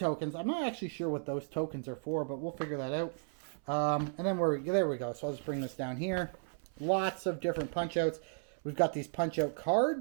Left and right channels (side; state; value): left; silent; 55 dB below the other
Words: I'm not actually sure what those tokens are for, but we'll figure that out. And then there we go. So I'll just bring this down here. Lots of different punch outs. We've got these punch-out